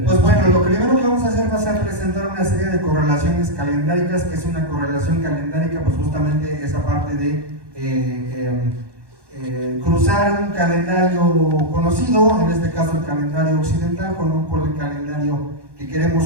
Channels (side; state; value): left; late; 1.1 ms